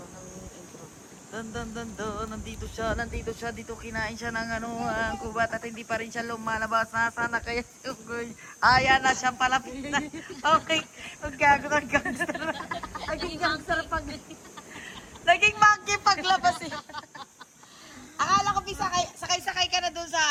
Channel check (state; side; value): identical; both; correlation 1.00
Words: intro. Nandito siya, dito kinain siya ng ang kubat at hindi pa rin siya lumalabas. Nasaan na kaya si Yunggoy? Ayan na siyang palapit na. Okay, maggago ng gangster. Naging gangster pag... Naging monkey paglabas eh. Akala ko sakay ka na dun